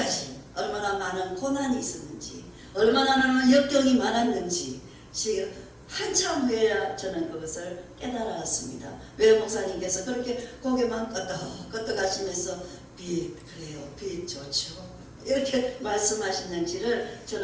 얼마나 많은 고난이 있었는지, 얼마나 많은 역경이 많았는지 지금 한참 후에야 저는 그것을 깨달았습니다. 왜 목사님께서 그렇게 고개만 끄덕끄덕 하시면서 그래요. 빛 좋죠. 이렇게 말씀하시는지를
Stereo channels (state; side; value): identical; both; correlation 1.00